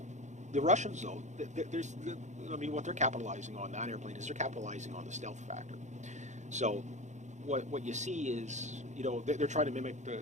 the Russians, though, what they're capitalizing on that airplane is they're capitalizing on the stealth factor. So what you see is, they're trying to mimic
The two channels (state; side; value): late; left; 0.34 ms